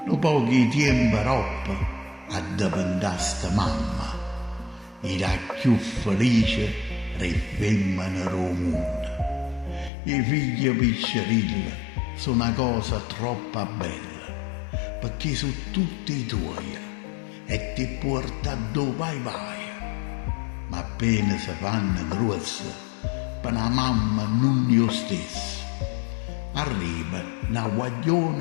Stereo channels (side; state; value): right; drops out; at 9.9 s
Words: Lo pochi tempo roppa a diventare mamma, era più felice delle femmine del mondo. I figli piccerilli sono una cosa troppo bella, perché sono tutti tuoi e ti porta dove vai. Ma appena si fanno grossi, per una mamma non è lo stesso. Arriva una